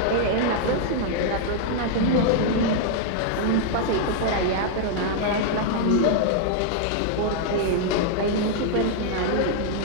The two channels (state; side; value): different; both; correlation -0.01